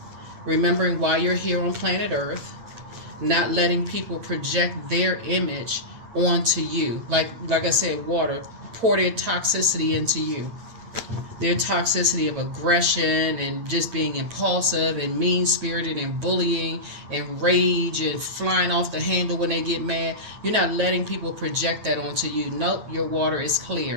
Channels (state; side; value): late; left; 9.0 ms